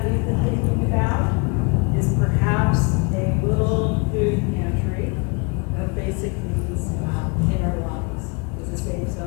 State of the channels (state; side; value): quieter; right; 31.7 dB